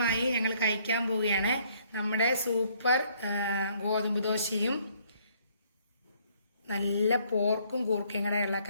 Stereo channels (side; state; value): both; inverted; correlation -0.64